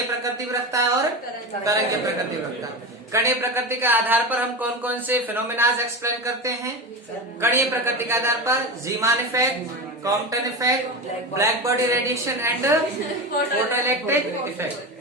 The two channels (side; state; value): both; normal; correlation 0.23